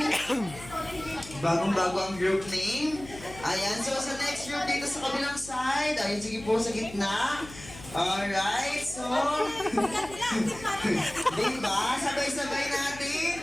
Bagong-bago ang group name. Ayan, so sa next group dito sa kabilang side. Ayun, sige po sa gitna. Alright, so... diba? Sabay-sabay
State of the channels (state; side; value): noise; left; hum, 16 dB below the sound